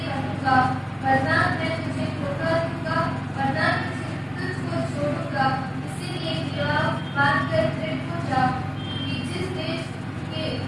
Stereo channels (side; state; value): both; identical; correlation 1.00